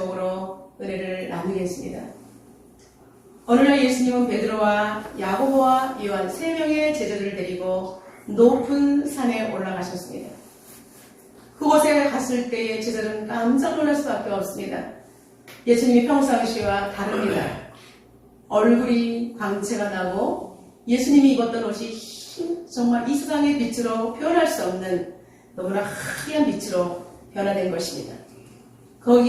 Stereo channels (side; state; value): both; identical; correlation 1.00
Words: 은혜를 나누겠습니다. 오늘날 예수님은 베드로와 야고보와 요한 3명의 제자들을 데리고 높은 산에 올라가셨습니다. 그곳에 갔을 때의 제자들은 깜짝 놀랄 수밖에 없습니다. 예수님이 평상시와 다릅니다. 얼굴이 광채가 나고 예수님이 입었던 옷이 정말 이 세상의 빛으로 표현할 수 없는 너무나 하얀 빛으로 변화된 것입니다.